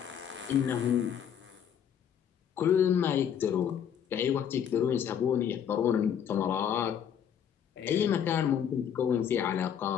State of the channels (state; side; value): quieter; right; 8.7 dB